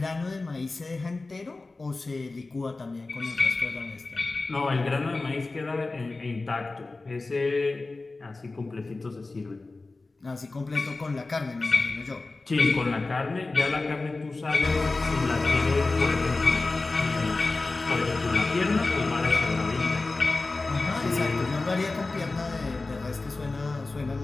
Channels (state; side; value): quieter; right; 3.4 dB